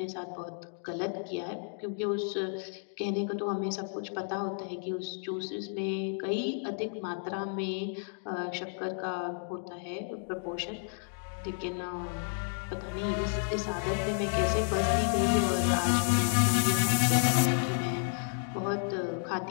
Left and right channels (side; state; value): right; silent; 57 dB below the other